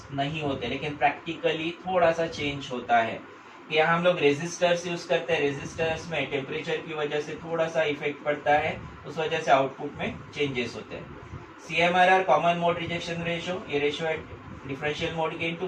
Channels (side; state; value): both; identical; correlation 1.00